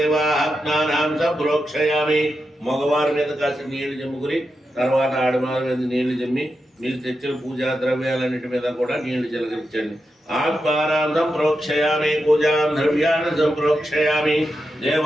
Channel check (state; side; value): normal; both; correlation 0.88